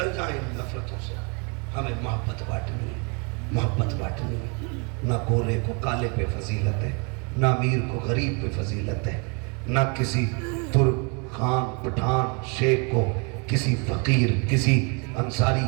جائیں نفرتوں سے. ہمیں محبت بانٹنی ہے، محبت بانٹنی ہے. نہ گورے کو کالے پہ فضیلت ہے، نہ امیر کو غریب پہ فضیلت ہے، نہ کسی ترک خان پٹھان شیخ کو کسی فقیر کسی انصاری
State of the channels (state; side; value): quieter; left; 34.1 dB